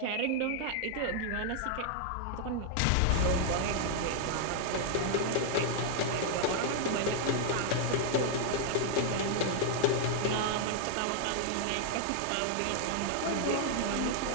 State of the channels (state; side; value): different; both; correlation 0.00